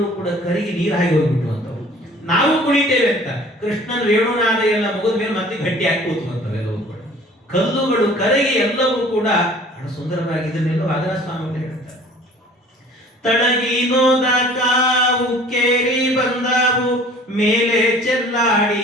ಕೂಡ ಕರಗಿ ನೀರಾಗಿ ಹೋಗ್ಬಿಟ್ಟು ಅಂತವು. ನಾವು ಕುಣಿತೇವೆ ಅಂತ ಕೃಷ್ಣನ ವೇಣುನಾದ ಎಲ್ಲ ಮುಗಿದ ಮೇಲೆ ಮತ್ತೆ ಗಟ್ಟಿಯಾಗಿ ಕೂತ್ಕೊಂತವೆಲ್ಲವೂ ಕೂಡ. ಕಲ್ಲುಗಳು ಕರಗಿ ಎಲ್ಲವೂ ಕೂಡ ಬಹಳ ಸುಂದರವಾಗಿ ಇದನ್ನೆಲ್ಲ ವಾದನ ಸ್ವಾಮಿ ಹೇಳ್ತಾರೆ. ತಳಗಿನೋದ ಕಾವು ಕೇರಿ ಬಂದಾವು, ಮೇಲೆ ಚೆಲ್ಲಾಡಿ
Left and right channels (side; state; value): both; normal; correlation 0.50